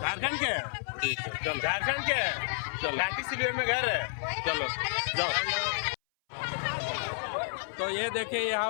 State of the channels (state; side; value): silent; right; 57 dB below the other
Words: के? ठीक है चलो। झारखंड के? चलो। लाठी सिलवे में घर है। चलो जाओ। तो ये देखिए